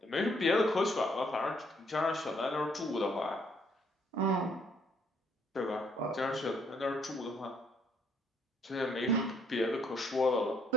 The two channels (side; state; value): both; normal; correlation 0.66